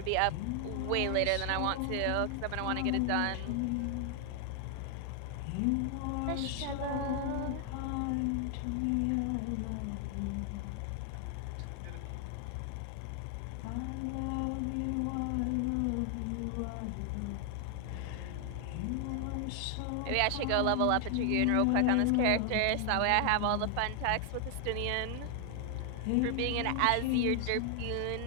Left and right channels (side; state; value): both; different; correlation 0.00